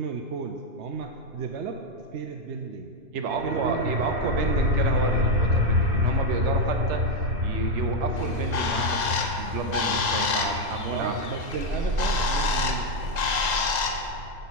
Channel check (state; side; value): late; left; 2.0 ms